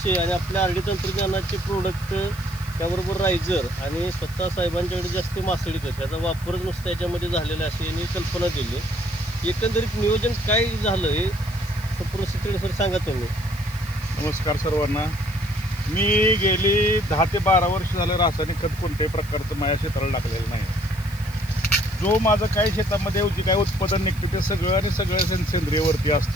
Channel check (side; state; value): left; noise; hiss, 20 dB below the sound